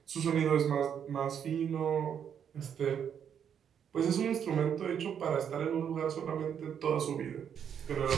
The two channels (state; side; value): quieter; left; 8.3 dB